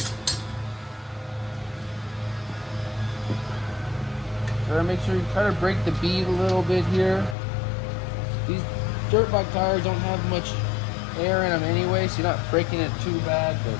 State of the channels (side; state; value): right; drops out; at 7.4 s